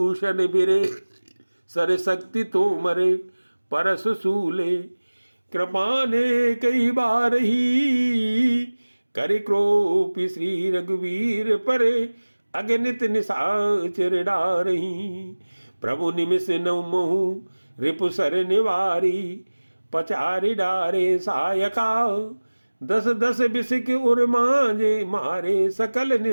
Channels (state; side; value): inverted; both; correlation -1.00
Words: बिरे, सर शक्ति तो मरे परस सूले कृपाने कई बार ही, कर क्रोपी श्री रघुवीर परे अगणित निशाचर डारही, प्रभु निमिष नौ महु रिपु सर निवारी, पचारि डारे सायका, दस दस बिसिक उर मांजे मारे सकल